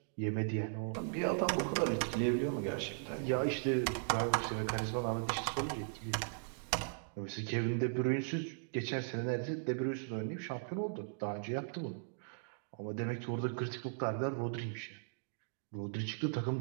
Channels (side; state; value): left; silent; digital silence